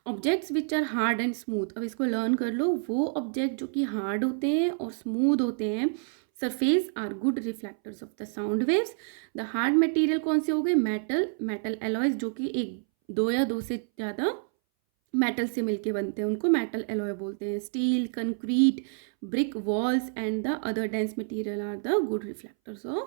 Objects which are hard and smooth. अब इसको लर्न कर लो. वो ऑब्जेक्ट जो कि हार्ड होते हैं और स्मूथ होते हैं surface are good reflectors of the sound waves. The hard material कौन से हो गए, मेटल एलॉयज, जो कि एक दो या दो से ज़्यादा मेटल से मिलके बनते हैं, उनको मेटल एलॉय बोलते हैं. Steel, concrete, brick walls and the other dense material are the good reflectors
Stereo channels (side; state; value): left; silent; 59 dB below the other